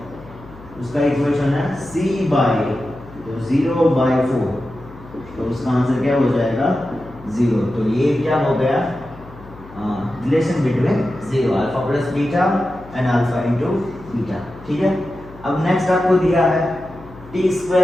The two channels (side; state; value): left; noise; hum, 19 dB below the sound